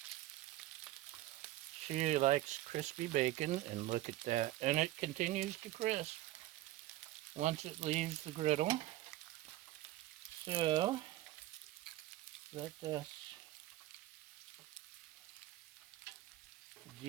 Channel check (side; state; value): left; quieter; 15.6 dB